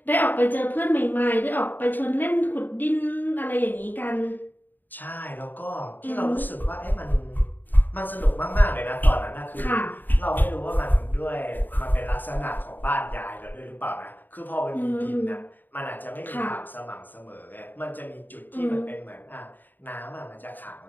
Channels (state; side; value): late; right; 0.089 ms